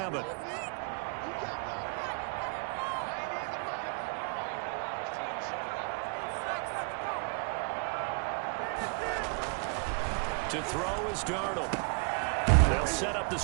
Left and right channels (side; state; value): left; quieter; 39.9 dB